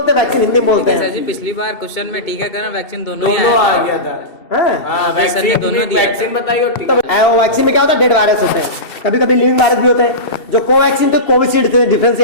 हैं, वैक्सीन हिंदी में बोलते हैं। सर जी पिछली बार क्वेश्चन में टीकाकरण वैक्सीन दोनों ही आ आया गया था। वैक्सीन बताइए और टीका। वैक्सीन में क्या होता है, डेड वायरस होते हैं, कभी कभी लिविंग वायरस भी होते हैं। जो कोवैक्सीन तो कोविशील्ड थे, डिफरेंस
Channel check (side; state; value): right; late; 2.7 ms